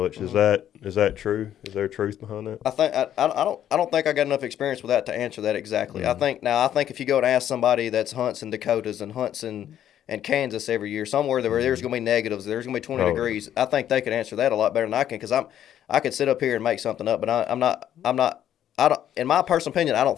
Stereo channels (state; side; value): quieter; right; 10.8 dB